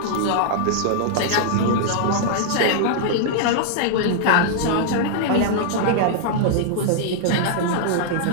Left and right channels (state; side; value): different; both; correlation -0.01